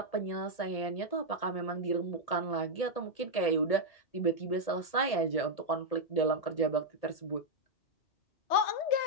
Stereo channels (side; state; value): right; late; 1.8 ms